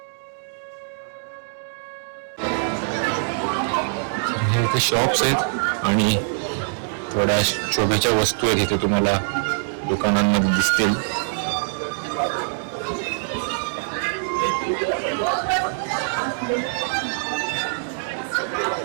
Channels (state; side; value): silent; left; 63 dB below the other